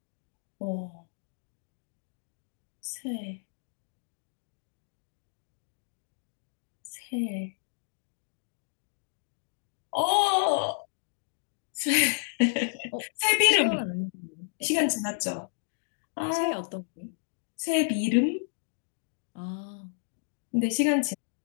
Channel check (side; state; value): right; silent; digital silence